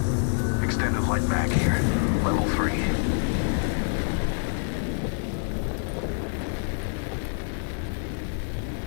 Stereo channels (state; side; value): silent; right; digital silence